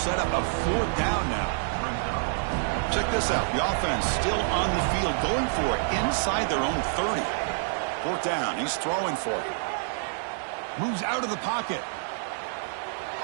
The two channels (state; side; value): silent; left; digital silence